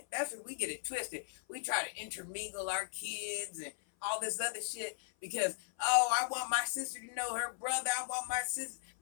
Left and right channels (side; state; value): right; silent; 53 dB below the other